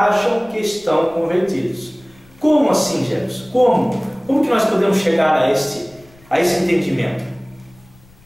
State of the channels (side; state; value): left; noise; rumble, 28 dB below the sound